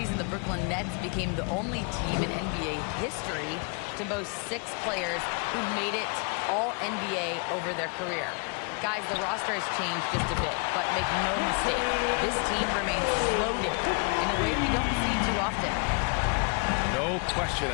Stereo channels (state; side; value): quieter; right; 34.8 dB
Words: the Brooklyn Nets became the only team in NBA history to boast 6 players who made it all NBA over their career. Guys, the roster has changed just a bit, but make no mistake, this team remains loaded in a way we don't see too often. No question,